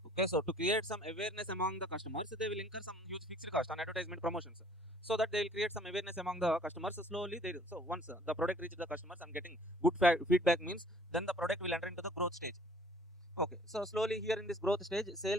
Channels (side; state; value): both; normal; correlation 0.56